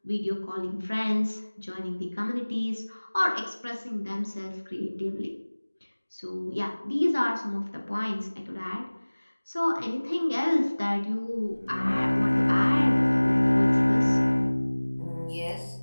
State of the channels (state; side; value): inverted; both; correlation -1.00